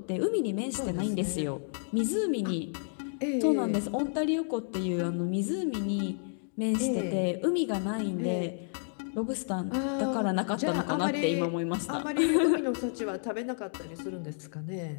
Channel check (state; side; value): silent; right; digital silence